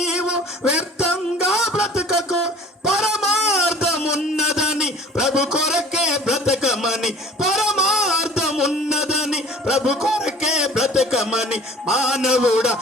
వ్యర్థంగా బ్రతుకకు. పరమార్థమున్నదని ప్రభు కొరకే బ్రతకమని, పరమార్థమున్నదని ప్రభు కొరకే బ్రతకమని. మానవుడా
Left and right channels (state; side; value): normal; both; correlation 0.46